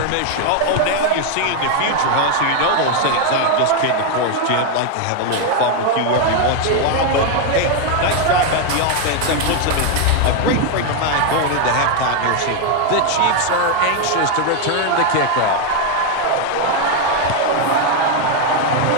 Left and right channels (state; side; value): different; both; correlation 0.01